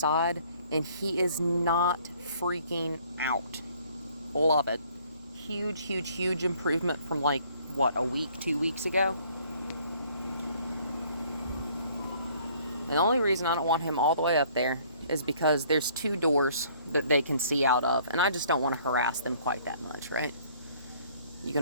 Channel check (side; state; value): both; inverted; correlation -0.59